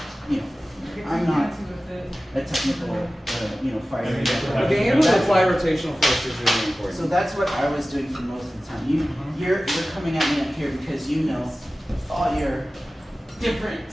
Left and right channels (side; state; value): both; normal; correlation 0.96